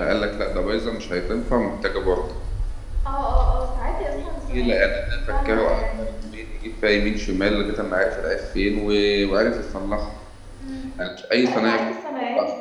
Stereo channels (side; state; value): both; identical; correlation 1.00